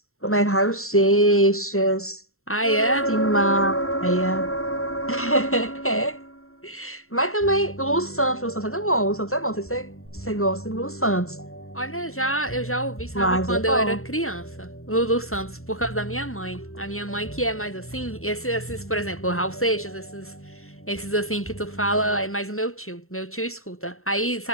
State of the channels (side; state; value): right; late; 0.62 ms